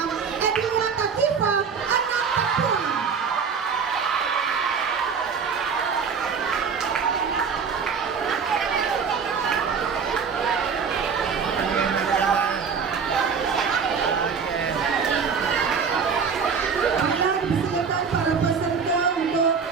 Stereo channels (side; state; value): left; quieter; 6.0 dB